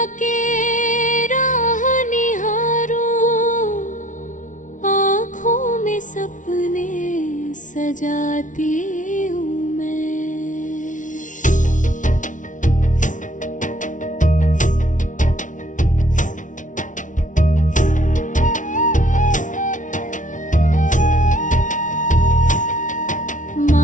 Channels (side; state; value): right; late; 0.37 ms